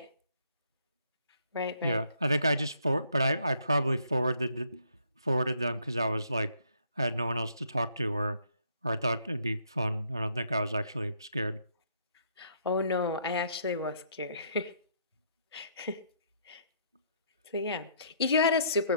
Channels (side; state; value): both; inverted; correlation -0.68